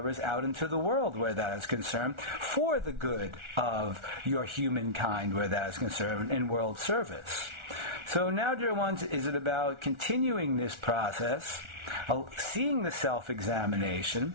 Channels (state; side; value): late; left; 1.4 ms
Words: out into the world where that is concerned, for the good of your humankind where that is concerned, in world service. So now, dear ones, is it about continuing this process, seeing the self-examination,